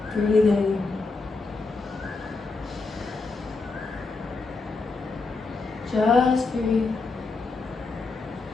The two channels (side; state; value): right; quieter; 3.9 dB